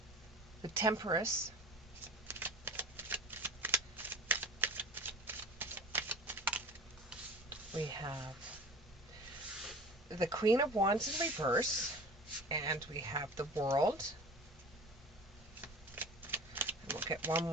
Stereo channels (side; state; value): both; normal; correlation 0.38